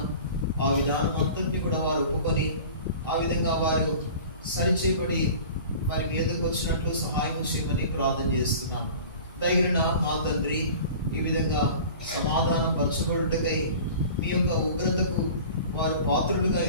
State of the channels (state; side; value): inverted; both; correlation -0.41